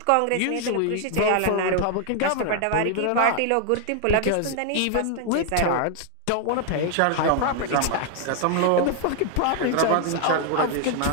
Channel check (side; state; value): both; different; correlation 0.00